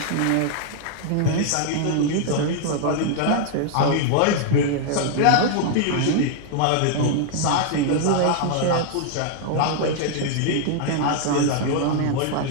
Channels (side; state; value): both; different; correlation 0.00